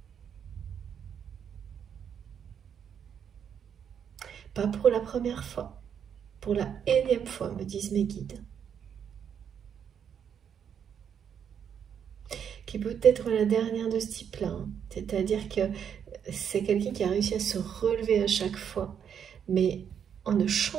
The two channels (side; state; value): left; quieter; 8.1 dB